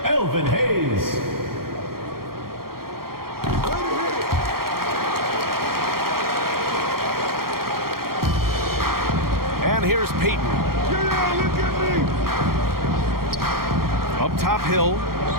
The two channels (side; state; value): left; late; 0.93 ms